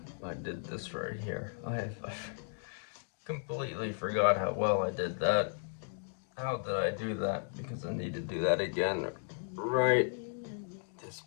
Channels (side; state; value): right; silent; digital silence